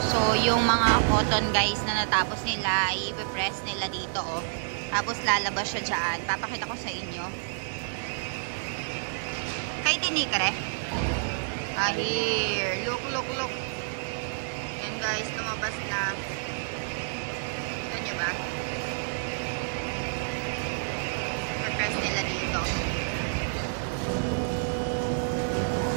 So, yung mga cotton guys na natapos nila, i-press nila dito, oh. Tapos lalabas siya dyan. Papakita ko sa inyo. Kay tinikre. Here. Look, look, look. Yan guys, lumabas na. Kita nyo ba? I-press nila dito.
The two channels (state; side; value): silent; left; digital silence